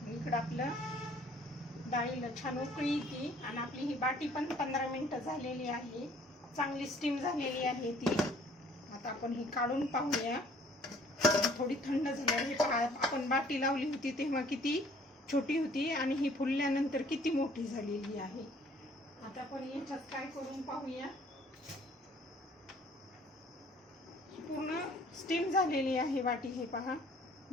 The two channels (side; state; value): both; normal; correlation 0.57